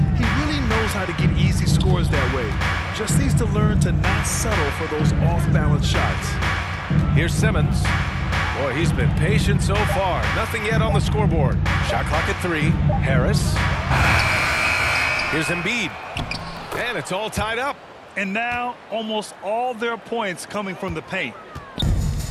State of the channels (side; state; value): both; identical; correlation 1.00